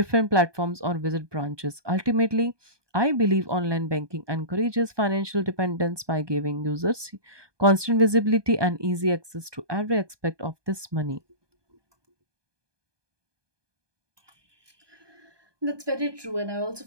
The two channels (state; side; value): late; left; 1.2 ms